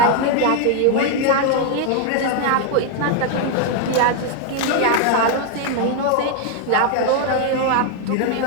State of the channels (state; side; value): different; both; correlation 0.01